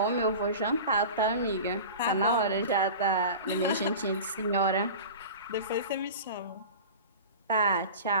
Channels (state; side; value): inverted; both; correlation -0.34